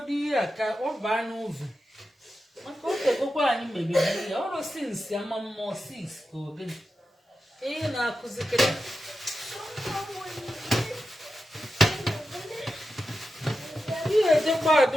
ihe a ka ọ baa n'ụzọ maka o tegokwa anyị mebiri ya ọrụ sinsi ama mmụọ 6 ka ogene ihe na-akụzikere ihe ejekwa ada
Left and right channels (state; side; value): normal; both; correlation 0.90